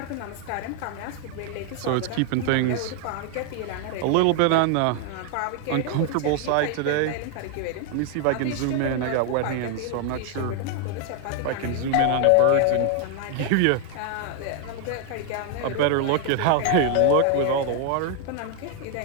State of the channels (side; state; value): both; different; correlation 0.00